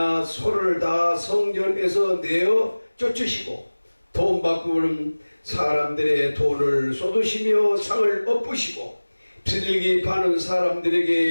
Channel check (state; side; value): inverted; both; correlation -1.00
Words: 소를 다 성전에서 내어 쫓으시고 돈 바꾸는 사람들의 돈을 쏟으시며 상을 엎으시고 비둘기 파는 사람들에게